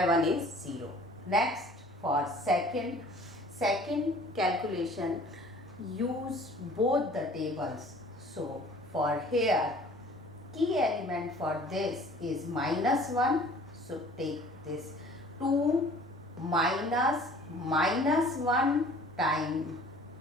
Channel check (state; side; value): normal; both; correlation 0.50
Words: 1 is 0. Next, for second calculation, use both the tables. So for here, key element for this is minus 1. So take this 2 minus 1 times